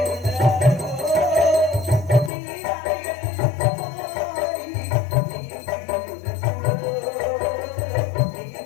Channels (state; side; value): drops out; right; at 2.3 s